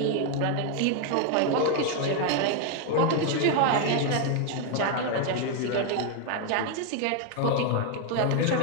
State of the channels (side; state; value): both; different; correlation 0.01